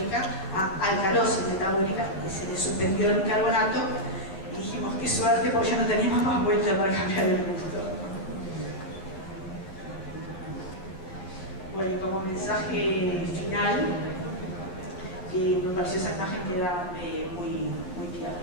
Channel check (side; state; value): right; late; 11 ms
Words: a alcalosis metabólica, y se le suspendió el bicarbonato y dijimos, qué suerte, porque ya no teníamos más vuelta para cambiar el gusto. Bueno, y como mensaje final, me pareció esa imagen queda muy clara.